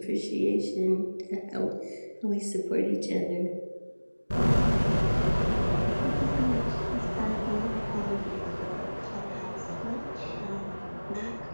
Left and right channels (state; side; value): inverted; both; correlation -1.00